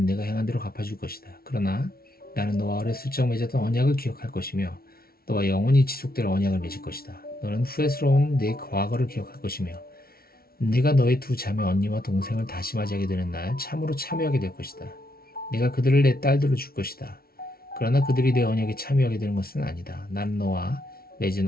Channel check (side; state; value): right; late; 0.44 ms